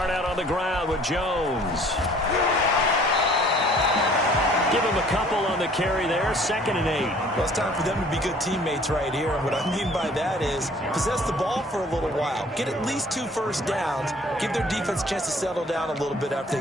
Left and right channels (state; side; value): normal; both; correlation 0.54